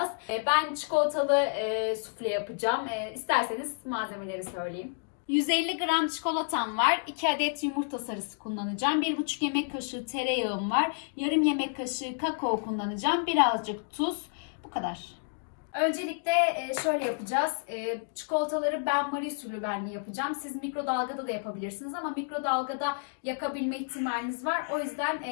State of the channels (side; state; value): right; silent; digital silence